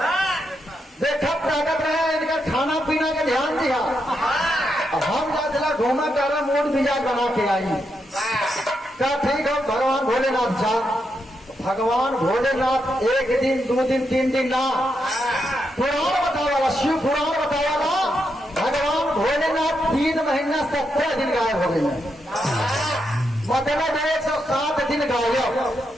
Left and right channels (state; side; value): normal; both; correlation 0.82